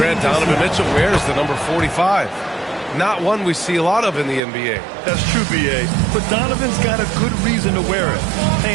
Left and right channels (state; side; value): drops out; left; at 4.4 s